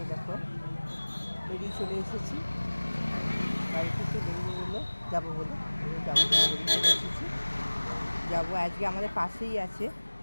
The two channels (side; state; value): both; inverted; correlation -1.00